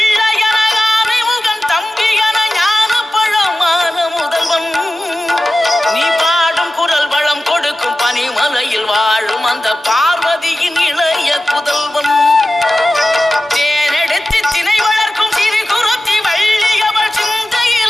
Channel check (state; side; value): normal; both; correlation 0.95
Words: என ஆனை முகன் தம்பி என ஞான பழமான முதல்வன் நீ பாடும் குரல் வளம் கொடுக்கும் பனிமலையில் வாழும் அந்த பார்வதியின் இளைய புதல்வன் தேனெடுத்து திணை வளர்க்கும் சிறு குருத்தி வள்ளியவள்